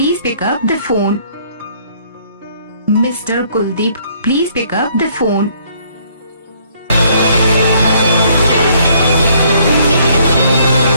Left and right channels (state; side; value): inverted; both; correlation -0.64